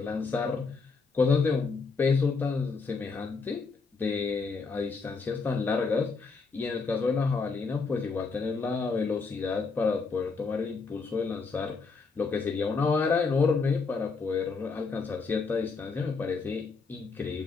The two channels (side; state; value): right; quieter; 4.6 dB